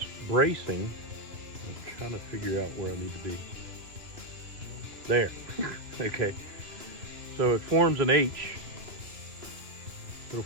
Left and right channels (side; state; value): left; late; 2.9 ms